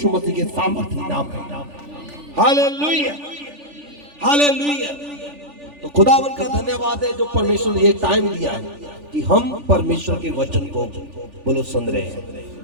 मसीह के सामर्थ्य नाम में। हालेलुया। हालेलुया। तो खुदावन का धन्यवाद है जो परमेश्वर ने ये टाइम दिया है कि हम परमेश्वर के वचन को बोलो सुन रहे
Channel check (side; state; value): left; late; 3.4 ms